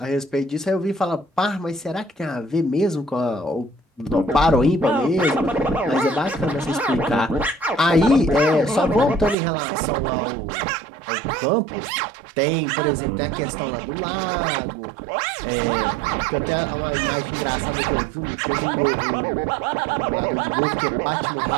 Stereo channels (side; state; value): left; drops out; at 9.3 s